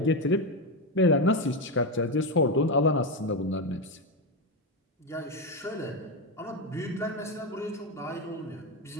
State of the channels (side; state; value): both; normal; correlation 0.10